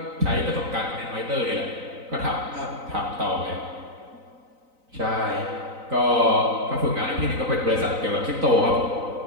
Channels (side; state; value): left; late; 3.9 ms